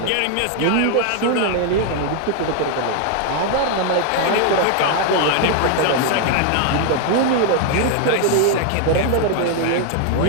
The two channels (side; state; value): both; different; correlation 0.00